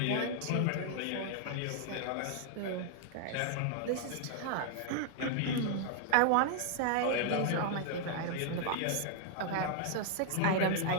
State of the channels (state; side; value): different; both; correlation 0.00